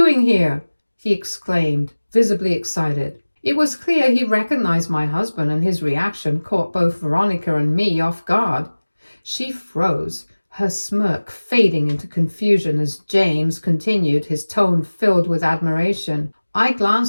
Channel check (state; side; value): inverted; both; correlation -1.00